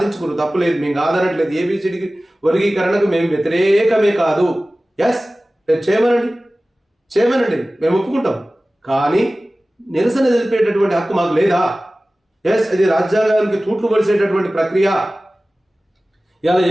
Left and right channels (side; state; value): both; normal; correlation 0.97